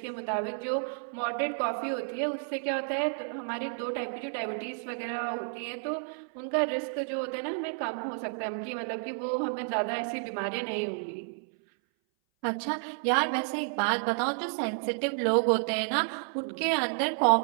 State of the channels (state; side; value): silent; left; 57 dB below the other